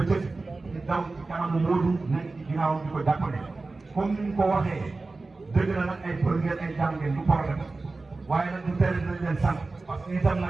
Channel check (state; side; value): quieter; left; 3.5 dB